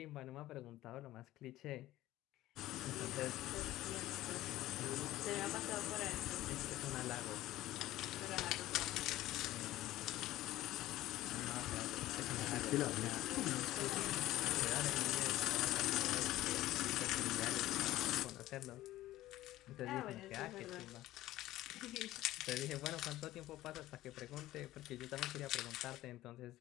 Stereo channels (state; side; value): quieter; right; 15.6 dB